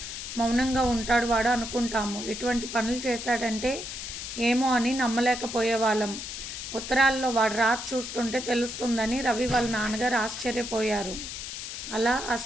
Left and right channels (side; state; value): left; noise; hiss, 7 dB below the sound